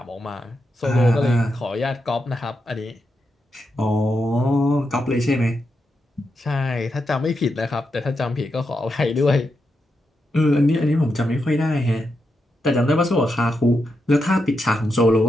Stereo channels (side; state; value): both; normal; correlation 0.85